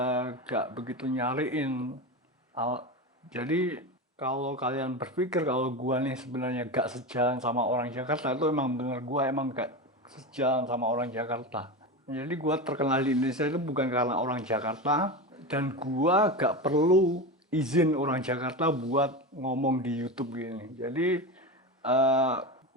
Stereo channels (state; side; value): normal; both; correlation 0.21